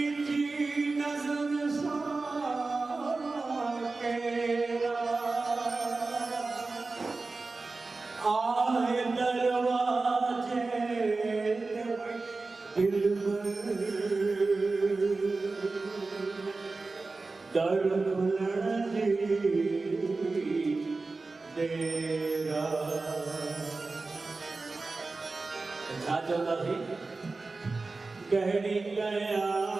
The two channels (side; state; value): left; quieter; 3.7 dB